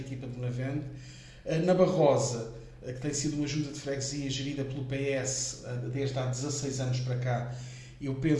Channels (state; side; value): identical; both; correlation 1.00